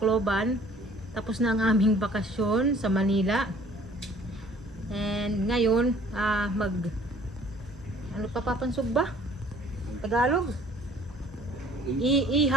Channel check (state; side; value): normal; both; correlation 0.55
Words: Tapos na ang aming bakasyon sa Manila. And ngayon, ano pa papansog ba? Tagalog?